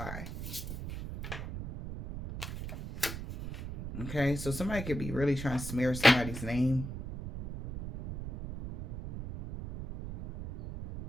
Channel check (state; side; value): noise; right; rumble, 8 dB below the sound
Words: Okay, so somebody could be really trying to smear somebody's name.